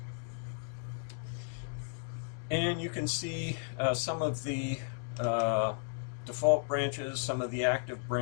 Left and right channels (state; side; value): silent; right; 55 dB below the other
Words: And you can see some of the default branches, some of the active